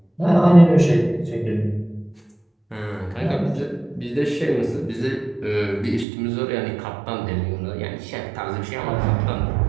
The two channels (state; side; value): drops out; left; at 6.1 s